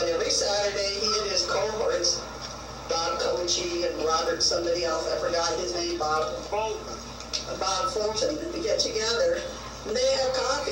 every Saturday he and his cohorts, Bob Gochee and Robert, somebody else, I forgot his name, Bob Fulton, they get together and they have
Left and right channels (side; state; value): both; identical; correlation 1.00